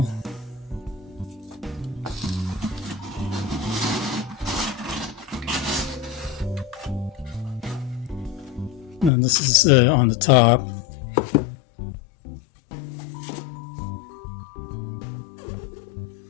And this is on the top.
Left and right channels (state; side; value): drops out; right; at 9.1 s